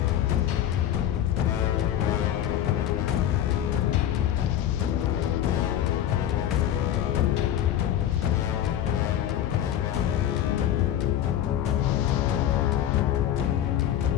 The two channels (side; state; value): right; quieter; 11.1 dB